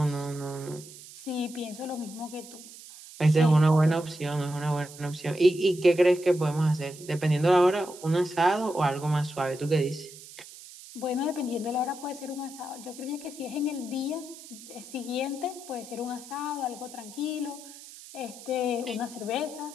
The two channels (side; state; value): right; noise; hiss, 17 dB below the sound